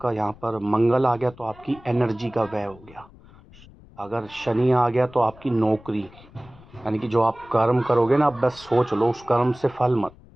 यहाँ पर मंगल आ गया तो आपकी एनर्जी का व्यय हो गया। अगर शनि आ गया तो आपकी नौकरी, यानी कि जो आप कर्म करोगे ना, आप बस सोच लो उस कर्म से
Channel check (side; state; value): left; noise; rumble, 23 dB below the sound